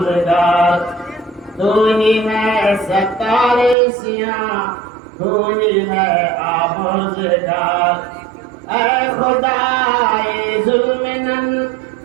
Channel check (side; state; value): left; drops out; at 3.8 s